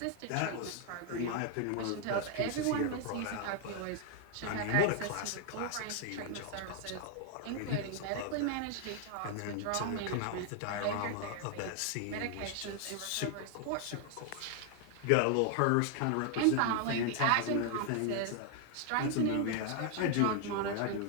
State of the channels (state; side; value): different; both; correlation 0.00